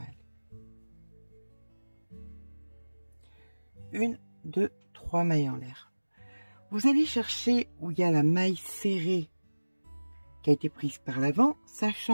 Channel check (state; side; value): inverted; both; correlation -1.00